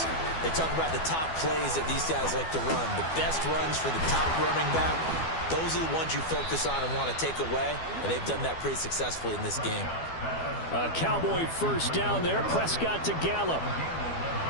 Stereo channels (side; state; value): right; late; 12 ms